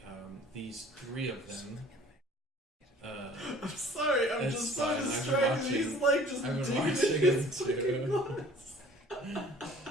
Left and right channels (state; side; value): normal; both; correlation 0.50